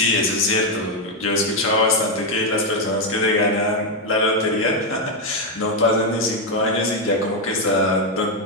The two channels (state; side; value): normal; both; correlation 0.04